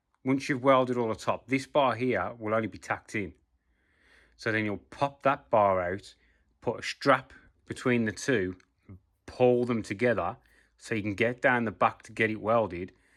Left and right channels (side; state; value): both; identical; correlation 1.00